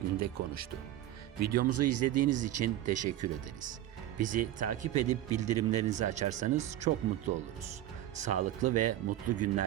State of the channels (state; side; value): quieter; left; 13.3 dB